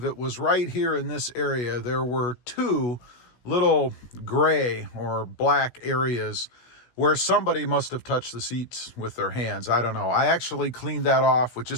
it was right here in this area, there were two little gray or black areas where somebody must have touched the seats with their hands. I don't know. I actually cleaned that off with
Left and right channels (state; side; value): late; right; 16 ms